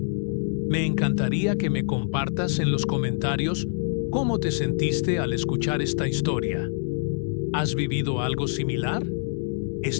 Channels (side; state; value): right; silent; digital silence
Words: Me encantaría que me compartas en los comentarios cómo te sentiste al escuchar esta historia. ¿Has vivido algo similar?